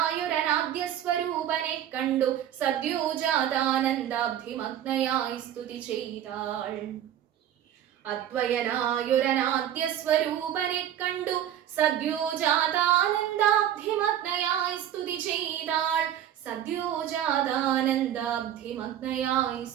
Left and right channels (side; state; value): left; quieter; 10.8 dB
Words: സ്വരൂപനെ കണ്ടു സദ്യോജാതാനന്ദാബ്ധിമഗ്നയായി സ്തുതി ചെയ്താൾ. അദ്വയനായൊരനാദ്യ സ്വരൂപനെ കണ്ടു സദ്യോജാതാനന്ദാബ്ധിമഗ്നയായി സ്തുതി ചെയ്താൾ. സദ്യോജാതാനന്ദാബ്ധിമഗ്നയായി